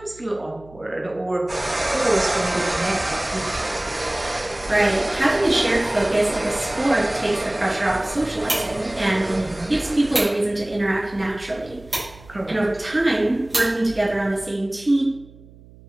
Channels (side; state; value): right; noise; hum, 23 dB below the sound